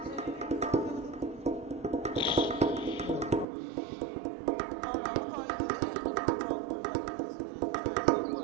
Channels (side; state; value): left; drops out; at 3.5 s